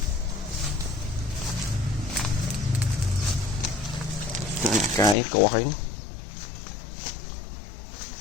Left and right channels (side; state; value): right; drops out; at 5.2 s